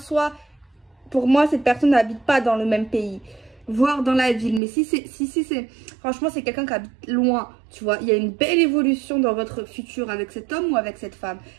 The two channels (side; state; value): left; drops out; at 4.6 s